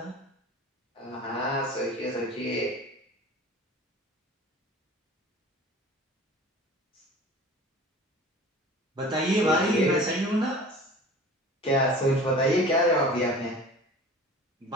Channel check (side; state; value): both; normal; correlation 0.41